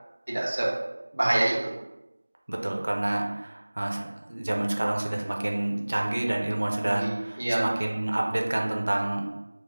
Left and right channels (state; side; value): inverted; both; correlation -1.00